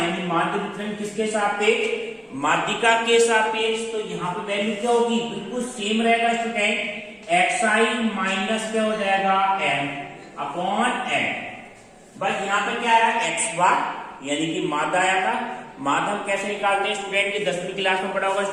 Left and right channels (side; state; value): both; identical; correlation 1.00